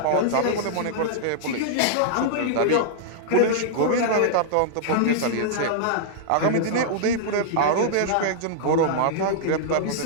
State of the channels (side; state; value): both; different; correlation -0.02